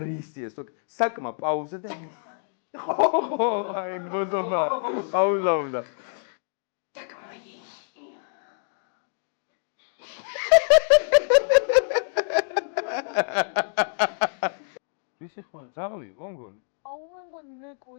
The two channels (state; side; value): silent; right; digital silence